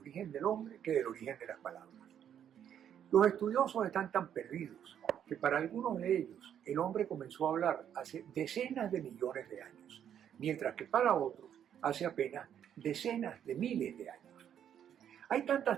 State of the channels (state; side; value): quieter; left; 9.4 dB